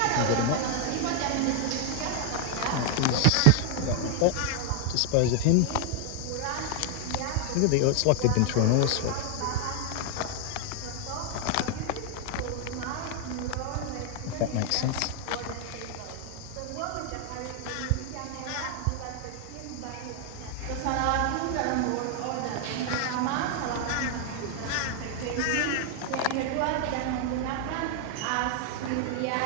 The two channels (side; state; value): both; different; correlation 0.00